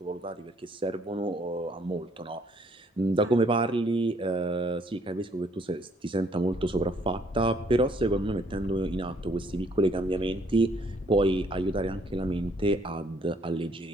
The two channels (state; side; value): normal; both; correlation 0.65